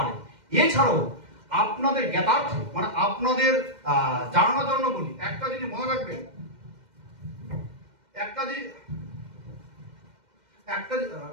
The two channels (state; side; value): late; left; 2.1 ms